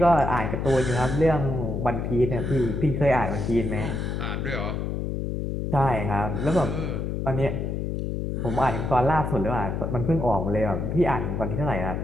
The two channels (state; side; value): noise; left; hum, 2 dB below the sound